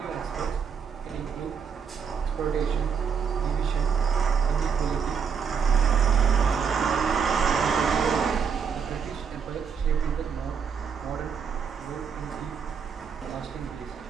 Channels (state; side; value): quieter; left; 6.6 dB